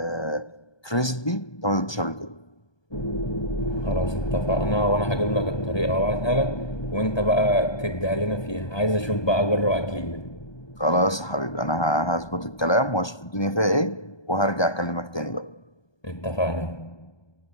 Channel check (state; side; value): late; right; 1.2 ms